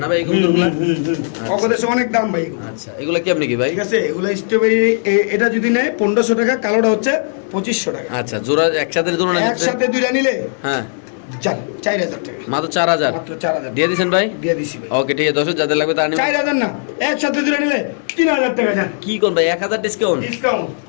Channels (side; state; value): right; silent; digital silence